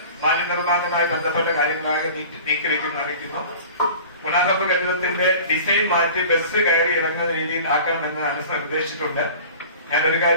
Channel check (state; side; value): inverted; both; correlation -0.41